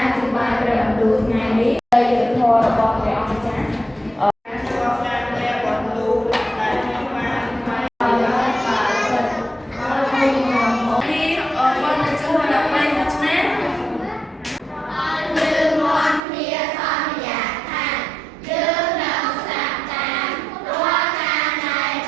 អធិប្បាយព្រះបន្ទូលថ្ងៃនេះដោយយុត្តិធម៌របស់ព្រះអង្គម្ចាស់របស់ការព្រះបន្ទូលដែលខ្ញុំបានថ្លែងឲ្យបានចិត្តឲ្យខ្ញុំមកនេះអរគុណចំពោះដល់ផ្នែកមួយឆ្នាំយើងមកគ្នាសន្យាថាយើងនឹងស្ដាប់តាមរាល់ការណែ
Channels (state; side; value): drops out; left; at 16.2 s